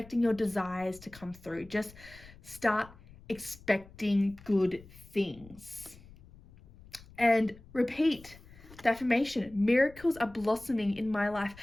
your desires to come through. Just start expecting good things. And repeat the affirmation, miracles are blossoming in my life.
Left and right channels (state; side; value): noise; left; rumble, 21 dB below the sound